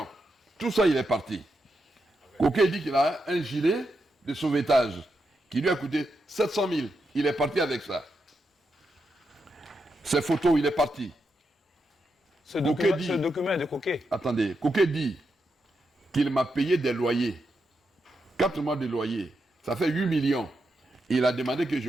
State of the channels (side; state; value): both; normal; correlation 0.85